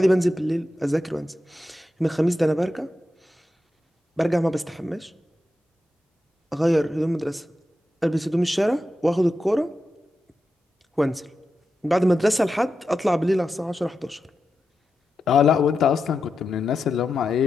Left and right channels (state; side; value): normal; both; correlation 0.89